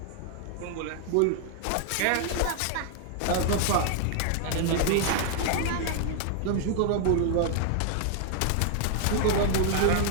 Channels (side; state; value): both; different; correlation 0.00